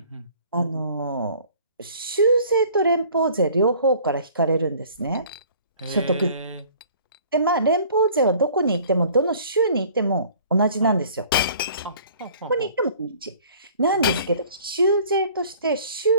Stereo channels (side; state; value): both; inverted; correlation -0.52